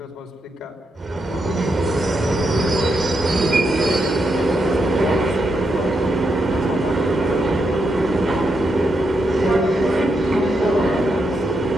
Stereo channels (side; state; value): both; normal; correlation 0.82